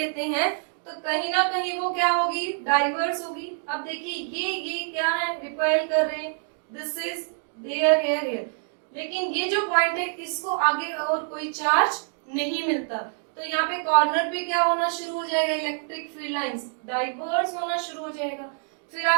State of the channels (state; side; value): silent; left; 61 dB below the other